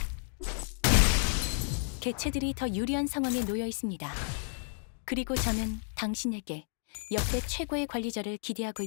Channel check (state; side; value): silent; right; digital silence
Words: 개체들이 더 유리한 상황에 놓여 있습니다. 그리고 저는 당신에게 역대 최고의 관리자를 기대하고